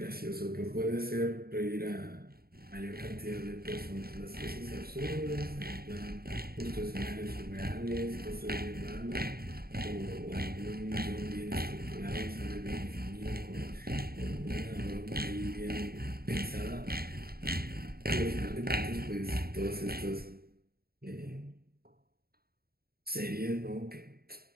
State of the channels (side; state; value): left; late; 0.45 ms